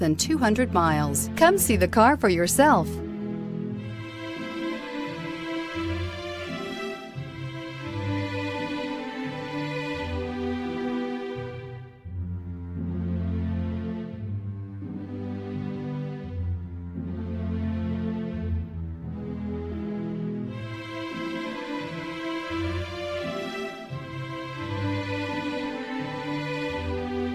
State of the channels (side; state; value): both; identical; correlation 1.00